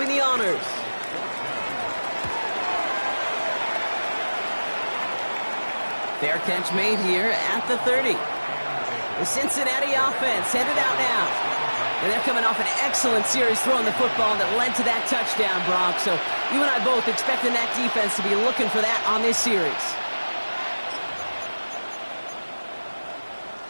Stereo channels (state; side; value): inverted; both; correlation -1.00